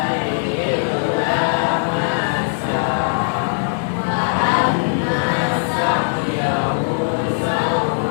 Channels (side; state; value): right; silent; 66 dB below the other